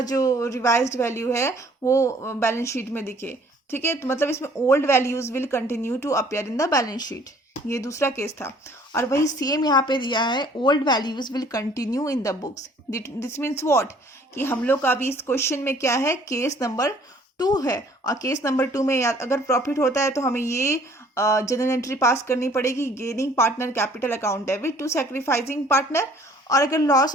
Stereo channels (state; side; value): normal; both; correlation 0.56